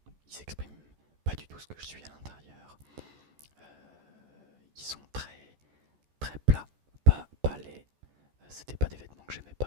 Ils s'expriment pas du tout ce que je suis à l'intérieur. Ils sont très très plats, pas laids. C'était pas des vêtements que j'aimais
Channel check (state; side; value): late; left; 14 ms